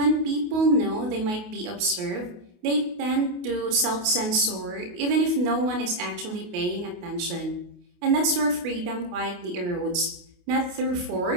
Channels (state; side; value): late; left; 28 ms